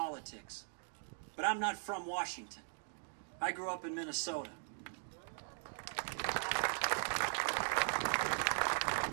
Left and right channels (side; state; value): left; silent; digital silence